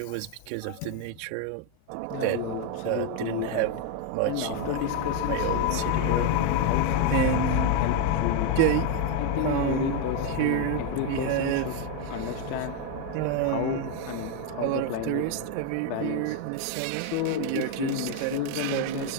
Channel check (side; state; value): both; different; correlation 0.01